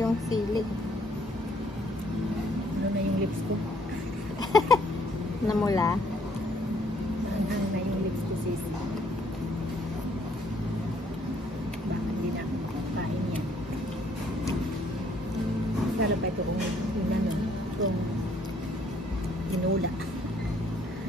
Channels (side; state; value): both; normal; correlation 0.65